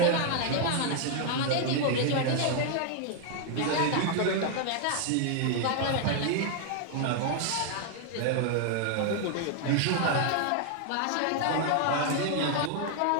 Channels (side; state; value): both; different; correlation 0.00